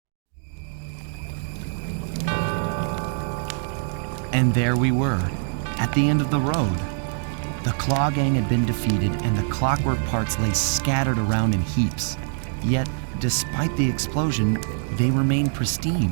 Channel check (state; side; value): silent; left; 60 dB below the other